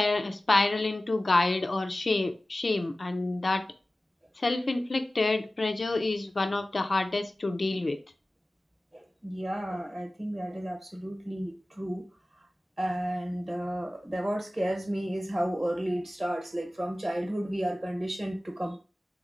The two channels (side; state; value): both; normal; correlation 0.97